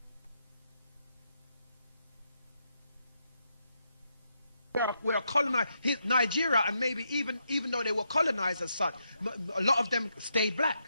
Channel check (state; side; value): inverted; both; correlation -0.81